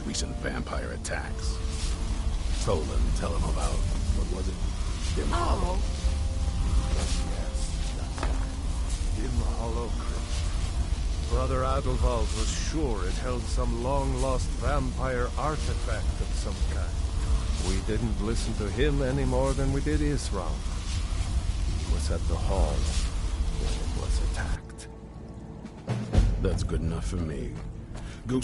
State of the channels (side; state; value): both; identical; correlation 1.00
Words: vampire attacks. Tolan, tell him about, what was it? Dim Hollow. Yes, that's it. Dim Hollow Crypt. Brother AWWW was sure it held some long-lost vampire artifact of some kind. We didn't listen to him any more than we did Isran. He was at the hall when it was attacked. That's good enough for me. Go